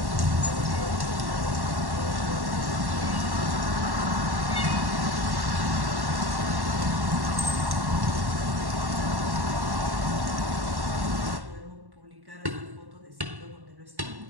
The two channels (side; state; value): left; late; 1.1 ms